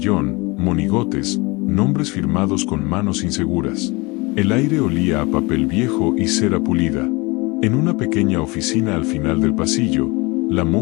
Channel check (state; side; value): quieter; right; 25.3 dB